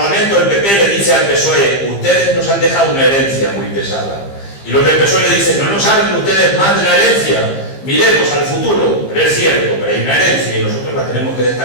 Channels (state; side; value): late; right; 15 ms